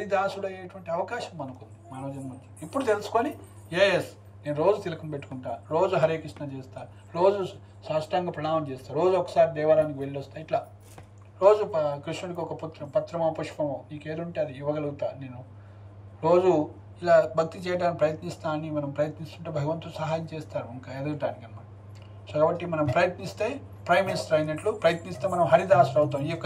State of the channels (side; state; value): both; identical; correlation 1.00